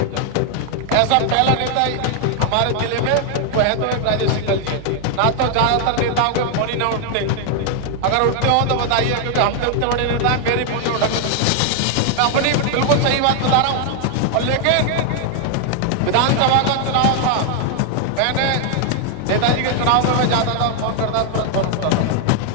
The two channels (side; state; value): both; different; correlation 0.00